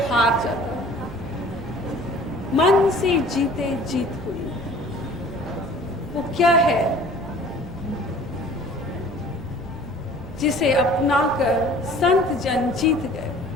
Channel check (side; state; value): right; noise; rumble, 17 dB below the sound